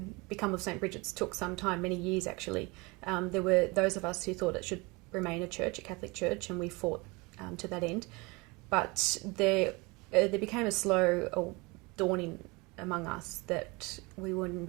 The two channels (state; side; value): quieter; left; 25.8 dB